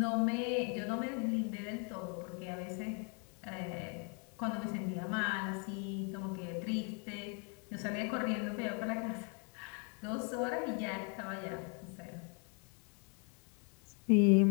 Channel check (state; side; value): quieter; right; 37.9 dB